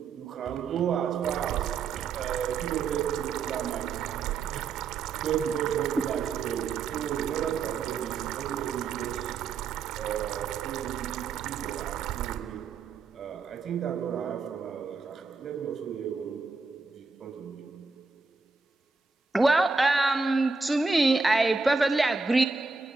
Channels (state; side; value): quieter; left; 4.6 dB